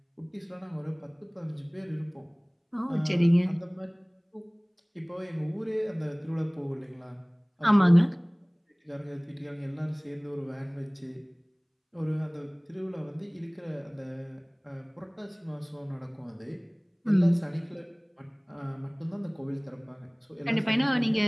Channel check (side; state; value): both; identical; correlation 1.00